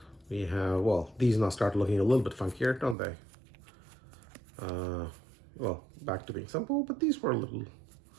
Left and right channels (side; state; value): left; drops out; at 3.0 s